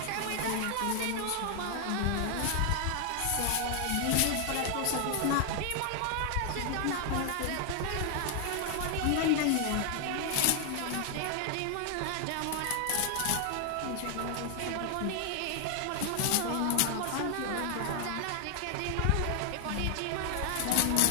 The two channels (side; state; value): both; different; correlation 0.00